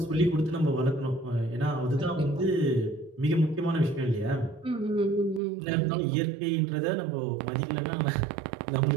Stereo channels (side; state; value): left; drops out; at 5.4 s